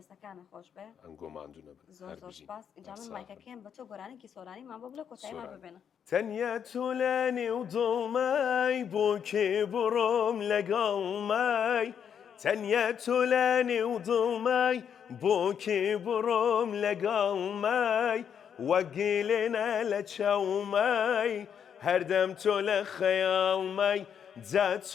خۆش بێ ئەنگۆ ماندوو نەبن زۆر سپاس اینجا من مایکەکەم بە تۆ گۆرانێکی سۆرانیمان بۆ بڵێ کۆتاییمان ببێنە تەنیا تولانی و دڵمای بۆ کێ بڕۆم لەگەڵ مای تنيت لاني وظلمي بوكي بروم لقلمي وقيلنا لتشومي هردمت لخيالمي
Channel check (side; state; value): right; quieter; 8.0 dB